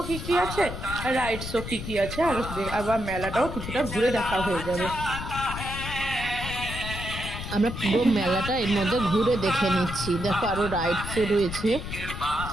কি কি আছে, আর রাইডসও কি কি আছে, আর আবার মেলাটাও কিছুটা ঘুরে দেখা হয়ে যাবে। আমরা পুরো মেলাটা এর মধ্যে ঘুরে দেখে নিচ্ছি। দেখো আরো রাইডসও রয়েছে,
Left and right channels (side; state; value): left; noise; rumble, 7 dB below the sound